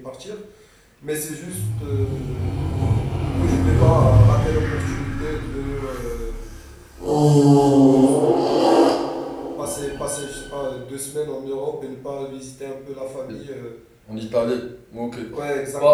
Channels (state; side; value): identical; both; correlation 1.00